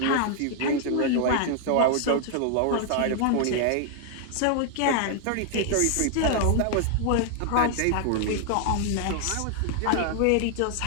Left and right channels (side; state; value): both; different; correlation 0.00